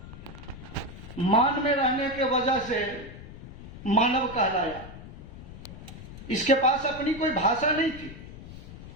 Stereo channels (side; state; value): left; noise; rumble, 14 dB below the sound